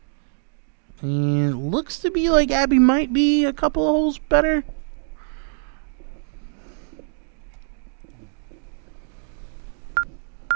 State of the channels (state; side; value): silent; left; digital silence